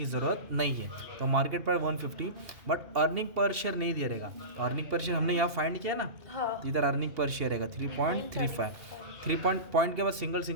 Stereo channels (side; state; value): left; late; 2.8 ms